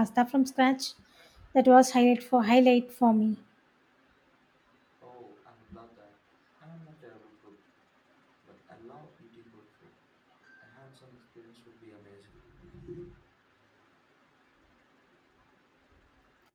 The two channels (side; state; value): both; identical; correlation 1.00